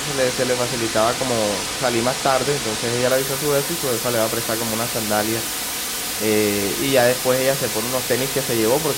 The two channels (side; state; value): both; identical; correlation 1.00